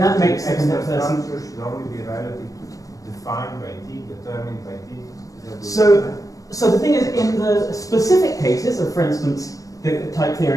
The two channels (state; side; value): late; right; 0.17 ms